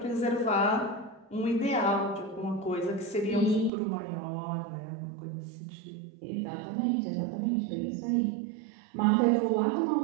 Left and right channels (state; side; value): drops out; left; at 3.7 s